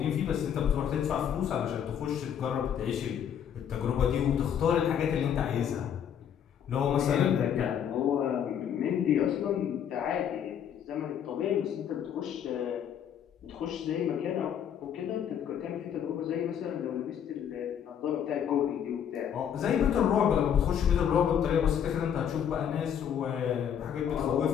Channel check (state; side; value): quieter; right; 8.8 dB